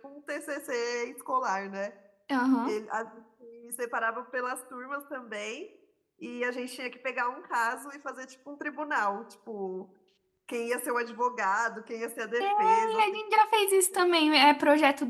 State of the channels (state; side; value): identical; both; correlation 1.00